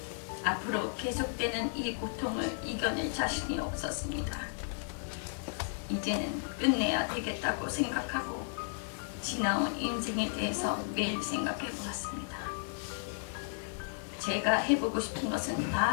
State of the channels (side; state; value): right; silent; digital silence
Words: 앞으로 계속되는 이 고통을 이겨낼 자신이 없었습니다. 이제는 끝내야 되겠다고 생각하고 지나온 인생에 대해서 매일 생각해 보았습니다. 제가 해보고 싶은 것은 다